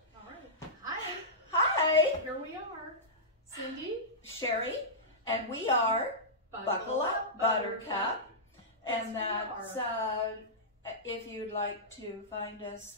right. Hi. Hi, Here we are. Cindy. Sherry, and we are Buckle Up Buttercup. And that's, if you'd like to find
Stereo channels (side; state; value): both; normal; correlation -0.14